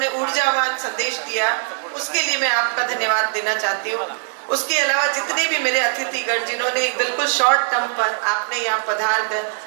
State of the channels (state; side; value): silent; left; 65 dB below the other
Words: ऊर्जावान संदेश दिया, उसके लिए मैं आपका धन्यवाद देना चाहती हूँ। उसके अलावा जितने भी मेरे अतिथिगण, जिन्होंने बिल्कुल शॉर्ट टर्म पर आपने यहाँ पधार कर